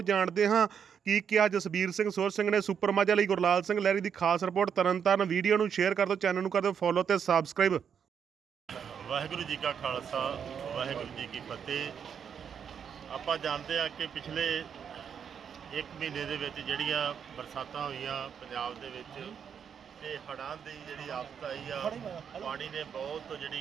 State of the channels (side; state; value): left; quieter; 7.6 dB